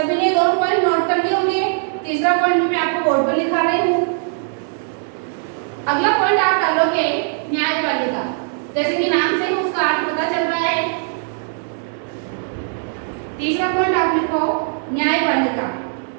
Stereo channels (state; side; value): silent; left; 60 dB below the other